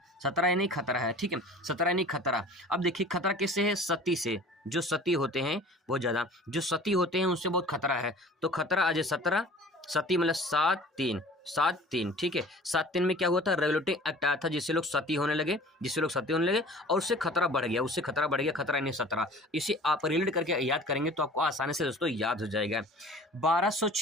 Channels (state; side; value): normal; both; correlation 0.45